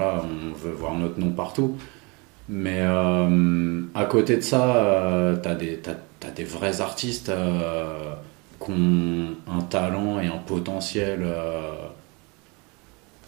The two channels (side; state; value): left; quieter; 29.3 dB